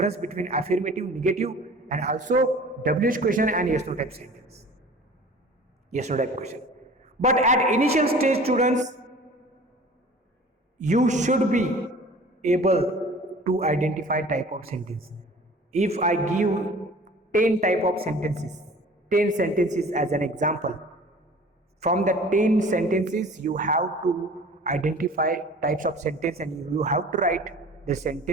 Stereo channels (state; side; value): normal; both; correlation 0.45